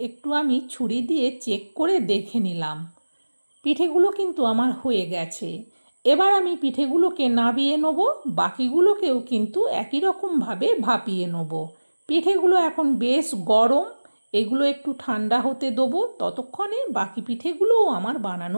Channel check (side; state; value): both; inverted; correlation -1.00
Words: একটু আমি ছুরি দিয়ে চেক করে দেখে নিলাম। পিঠেগুলো কিন্তু আমার হয়ে গেছে। এবার আমি পিঠেগুলোকে নাবিয়ে নেব, বাকিগুলোকেও কিন্তু একই রকমভাবে ভাপিয়ে নেব। পিঠেগুলো এখন বেশ গরম, এগুলো একটু ঠান্ডা হতে দেবো। ততক্ষণে বাকি পিঠেগুলোও আমার